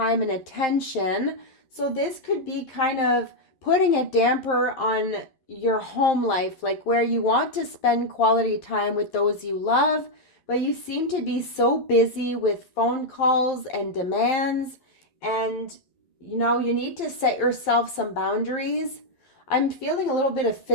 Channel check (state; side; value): late; right; 11 ms